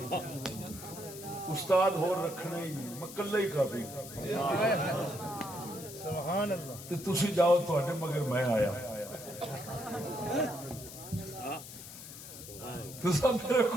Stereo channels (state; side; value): noise; left; hiss, 13 dB below the sound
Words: استاد ہو رکھنے ہی مکلہ ہی کافی. سبحان اللہ تے تسی جاؤ تواڈے مگر میں آیا تسا میرے